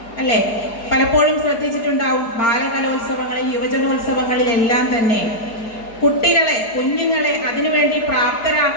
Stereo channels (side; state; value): right; late; 4.8 ms